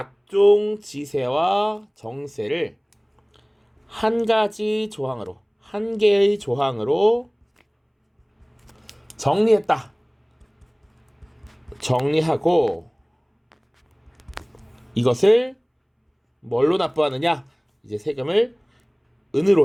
지세와 정세를 한 가지 조항으로, 한 개의 조항으로 정리했다. 정리하고 이것을 뭘로 납부하느냐? 이제 세금을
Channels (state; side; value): identical; both; correlation 1.00